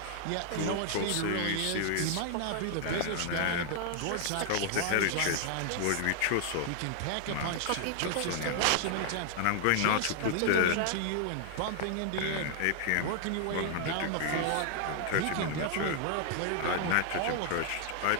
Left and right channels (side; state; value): both; different; correlation 0.00